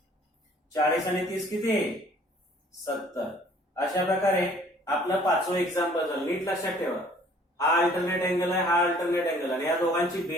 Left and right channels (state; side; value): normal; both; correlation 0.56